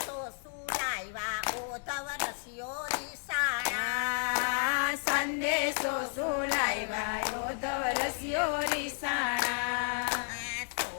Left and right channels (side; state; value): right; silent; 56 dB below the other